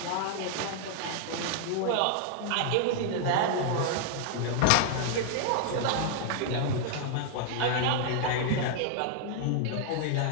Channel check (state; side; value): different; both; correlation 0.00